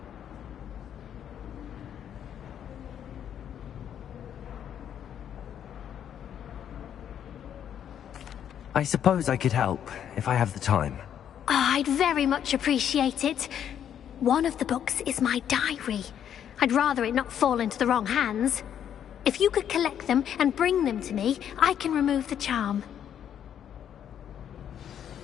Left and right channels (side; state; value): right; quieter; 9.4 dB